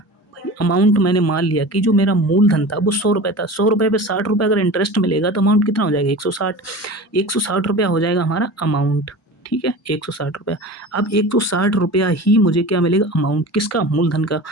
भाई, अमाउंट मैंने मान लिया कि जो मेरा मूलधन था वो 100 रुपये था, 100 रुपये पे 60 रुपये अगर इंटरेस्ट मिलेगा तो अमाउंट कितना हो जाएगा 160 रुपया हो जाएगा हमारा अमाउंट, ठीक है। 160 रुपया। अब 160 रुपया ही मुझे क्या मिलेगा अमाउंट, किसका, मूलधन का।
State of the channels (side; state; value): both; normal; correlation 0.34